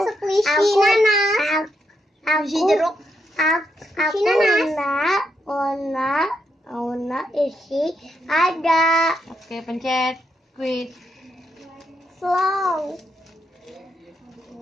squishy nanas. Squishy jeruk. Aku Ona isi ada. Oke, pencet squeeze. Slow.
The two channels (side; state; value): both; normal; correlation 0.80